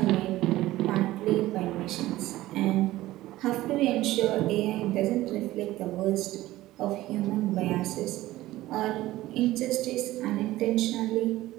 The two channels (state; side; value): quieter; left; 16.4 dB